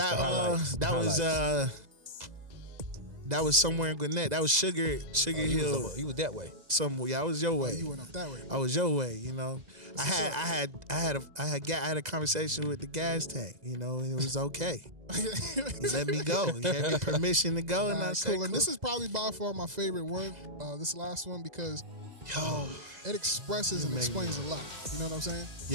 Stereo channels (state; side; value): late; left; 2.0 ms